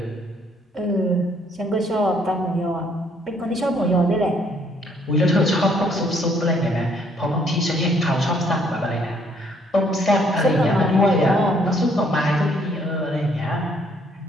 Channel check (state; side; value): normal; both; correlation 0.66